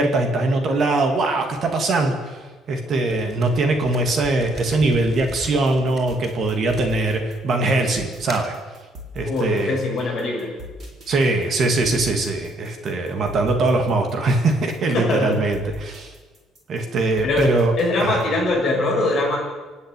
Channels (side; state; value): both; normal; correlation 0.67